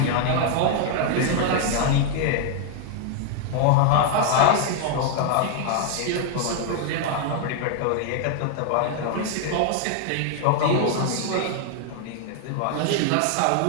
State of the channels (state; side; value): different; both; correlation 0.00